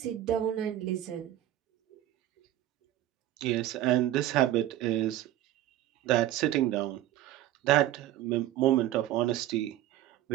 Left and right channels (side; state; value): left; quieter; 13.5 dB